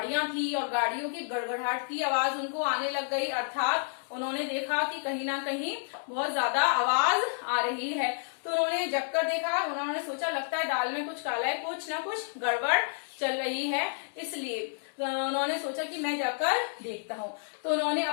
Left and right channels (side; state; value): right; silent; digital silence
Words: थी और गाड़ियों की गड़गड़ाहट की आवाज उनको आने लग गई, अर्थात उन्होंने देखा कि कहीं ना कहीं बहुत ज्यादा आवाज आ रही है। तो उन्होंने जगकर देखा, उन्होंने सोचा लगता है दाल में कुछ काला है, कुछ ना कुछ गड़बड़ चल रही है, इसलिए उन्होंने सोचा कि मैं जाकर देखता हूँ। तो उन्होंने